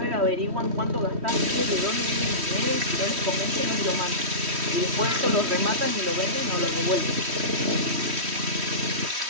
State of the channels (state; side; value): late; left; 3.1 ms